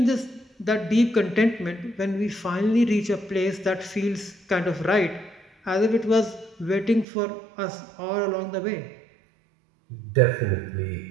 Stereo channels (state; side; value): drops out; left; at 7.1 s